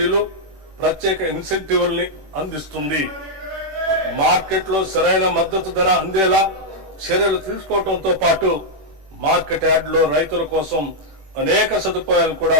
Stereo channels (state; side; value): late; left; 21 ms